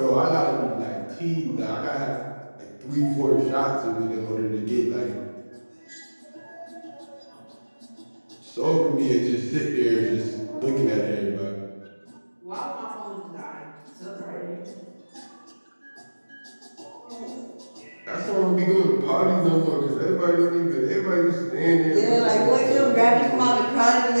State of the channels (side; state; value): both; inverted; correlation -1.00